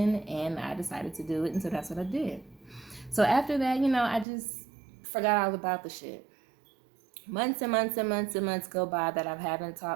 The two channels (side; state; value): left; drops out; at 4.2 s